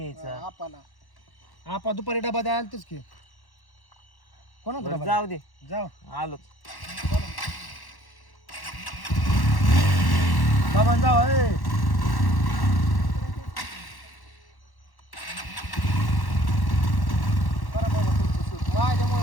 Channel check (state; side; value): late; right; 1.1 ms